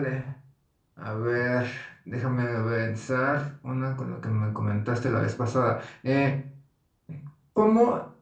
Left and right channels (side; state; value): both; identical; correlation 1.00